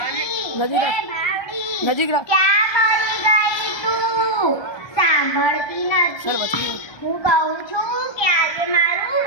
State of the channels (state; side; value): late; right; 1.2 ms